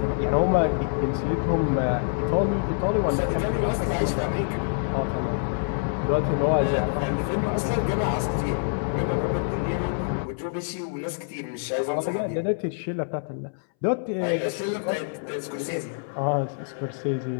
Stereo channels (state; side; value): silent; right; 61 dB below the other